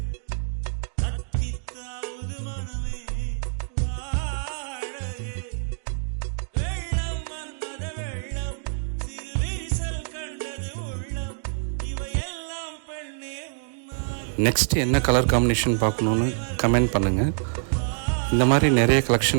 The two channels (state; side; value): silent; left; digital silence